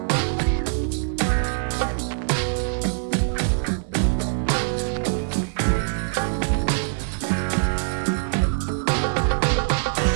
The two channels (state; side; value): silent; left; digital silence